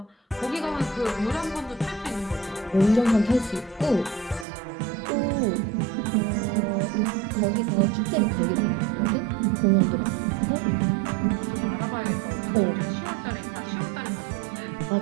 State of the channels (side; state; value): left; drops out; at 4.5 s